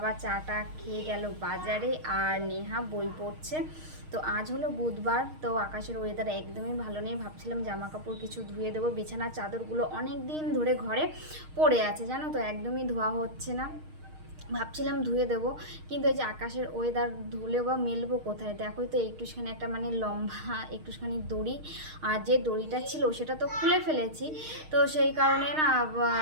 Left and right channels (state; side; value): late; left; 6.5 ms